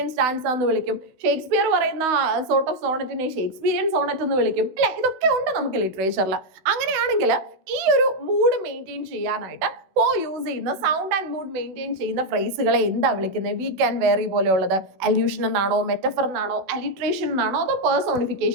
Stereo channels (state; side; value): late; left; 16 ms